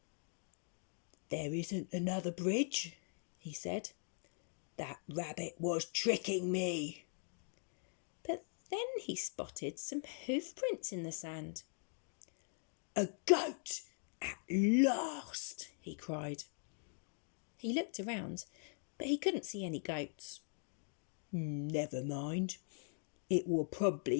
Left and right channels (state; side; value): silent; right; 50 dB below the other